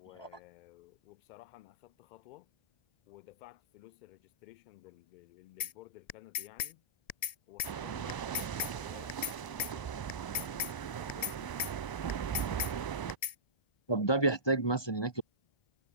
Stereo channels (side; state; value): right; late; 1.7 ms